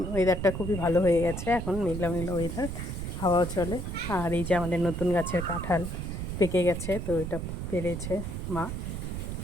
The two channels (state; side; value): noise; right; rumble, 5 dB below the sound